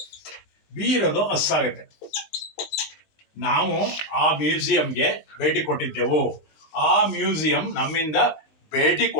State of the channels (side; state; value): right; late; 19 ms